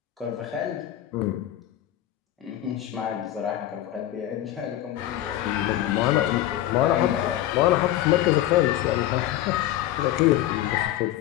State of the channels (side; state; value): right; quieter; 13.3 dB